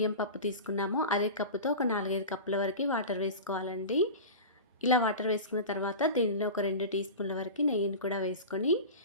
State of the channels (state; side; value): inverted; both; correlation -0.30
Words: పప్పు తీసుకున్నామో అదే కప్పుతో ఒక 4, 5 కప్పుల వరకు వాటర్ వేసుకోవాలండి. ఇలా వాటర్ వేసుకున్న తర్వాత దీనిలో ఒక 2 టీ స్పూన్ల వరకు నెయ్యిని కూడా వేసుకొని